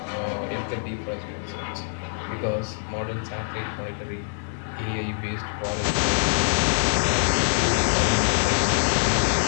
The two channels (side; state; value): right; silent; digital silence